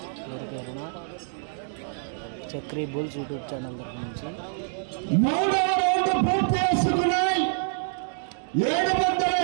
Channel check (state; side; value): silent; left; digital silence